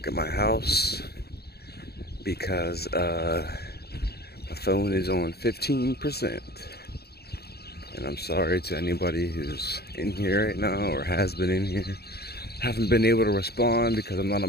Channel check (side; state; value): right; late; 0.46 ms